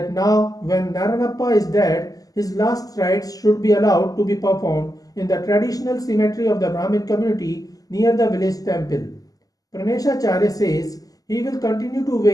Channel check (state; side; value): late; right; 0.17 ms